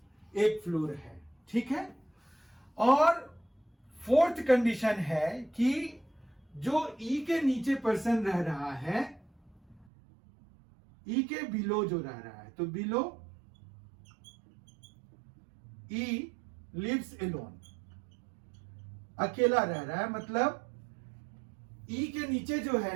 फ्लोर है, ठीक है। और 4th कंडीशन है कि जो ई के नीचे पर्सन रह रहा है, ई के बिलो जो रह रहा है, तो बिलो ई लिव्स एलोन, अकेला रह रहा है, मतलब ई के नीचे जो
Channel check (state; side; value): drops out; left; at 9.9 s